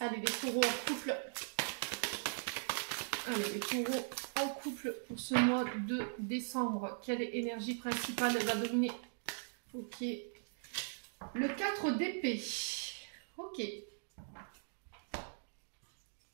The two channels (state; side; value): silent; left; digital silence